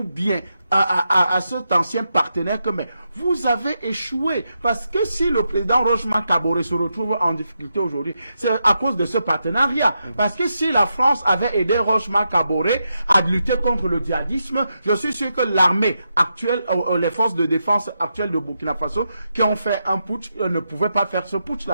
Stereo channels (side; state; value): both; inverted; correlation -0.85